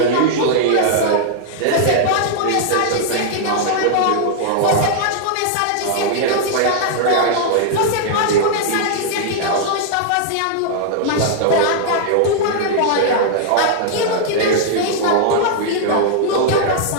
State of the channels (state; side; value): different; both; correlation -0.01